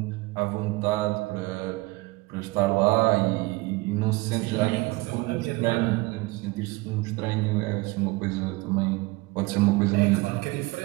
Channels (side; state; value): left; quieter; 22.8 dB